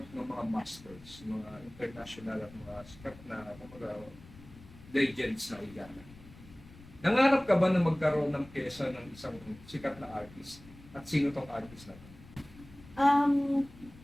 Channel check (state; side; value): noise; left; rumble, 20 dB below the sound